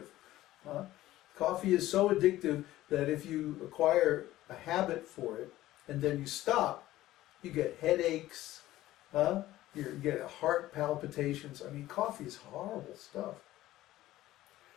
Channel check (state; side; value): quieter; right; 15.4 dB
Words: Coffee is so addictive that if you acquire a habit for it and then you stop, you get headaches, you get heart palpitations. I mean, coffee is horrible stuff.